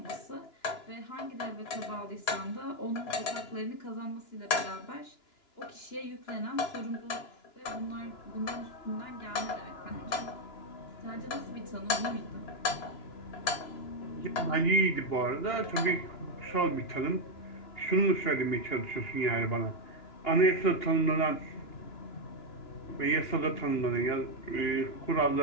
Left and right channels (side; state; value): right; late; 2.9 ms